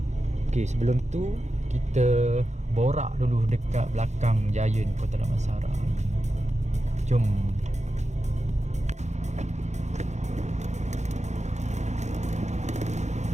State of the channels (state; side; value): late; left; 0.33 ms